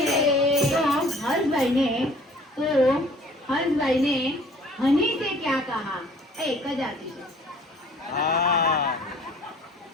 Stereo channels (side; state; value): both; normal; correlation 0.53